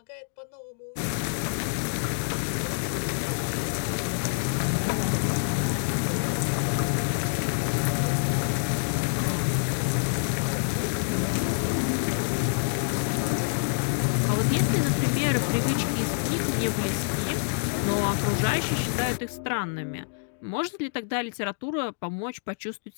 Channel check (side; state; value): right; silent; digital silence